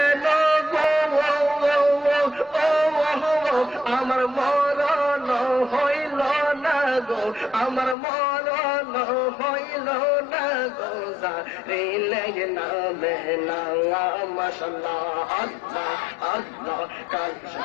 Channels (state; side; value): drops out; right; at 8.0 s